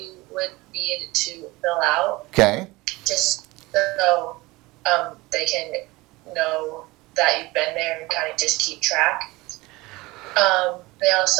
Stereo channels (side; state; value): left; quieter; 21.6 dB